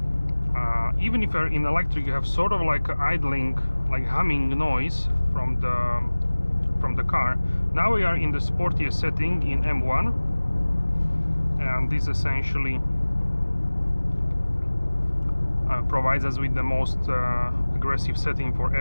Even if you're in electric, you have sort of like idling, like humming noise from the car. Now we are in the sportiest setting in M1, and this essentially provides us with the most aggressive setting for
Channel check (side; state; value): both; inverted; correlation -1.00